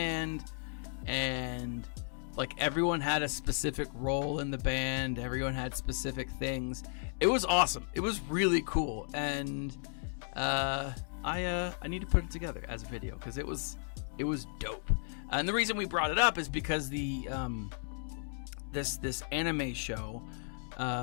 and like everyone had a specific role in the band. Everyone had specific things. It was awesome. It was really cool, and I need to put it together as a video because it was dope. And the reason we brought it up is because the this anime show.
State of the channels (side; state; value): right; silent; 55 dB below the other